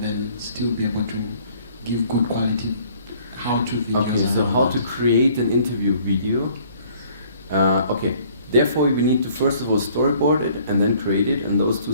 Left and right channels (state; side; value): inverted; both; correlation -0.58